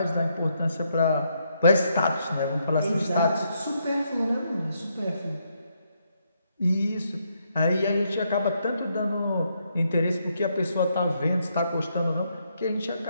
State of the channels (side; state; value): both; inverted; correlation -0.76